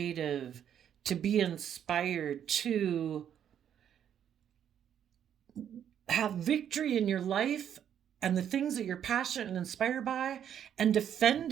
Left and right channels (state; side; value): quieter; left; 9.3 dB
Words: to be inspired, to have victory in your life and the things that you're passionate and inspired by, and defend